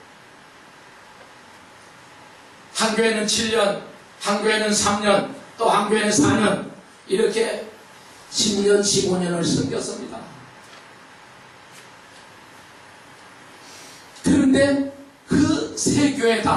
한 교회는 7년, 한 교회는 3년, 또 한 교회는 4년 이렇게 10년, 15년을 섬겼습니다. 그런데 그 세 교회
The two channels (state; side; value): identical; both; correlation 1.00